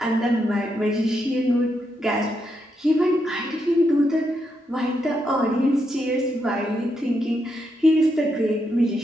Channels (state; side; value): normal; both; correlation 0.81